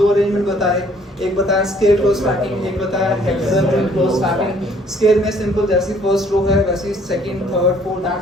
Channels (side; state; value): both; normal; correlation 0.60